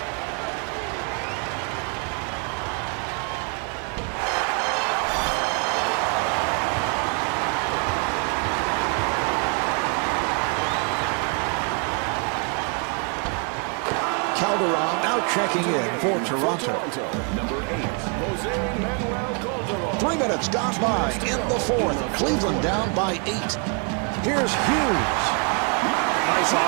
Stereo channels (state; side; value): quieter; left; 37.5 dB